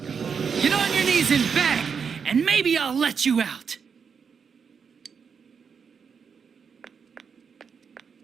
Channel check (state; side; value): quieter; left; 6.3 dB